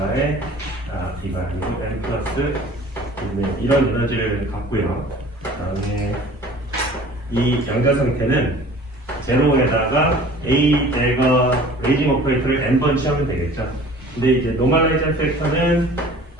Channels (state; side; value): normal; both; correlation 0.47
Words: b가 아니고 n 플러스 2분의 이런 에너지를 갖고요. 그다음에 이 연결 상태는 제로에다가 A 내가 레이징 오퍼레이터를 n번 취하면 되겠죠. 근데 이제 노멀라이징 팩터는